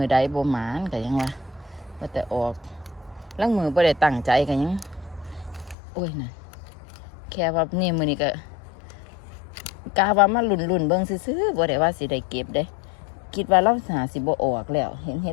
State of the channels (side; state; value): right; drops out; at 5.8 s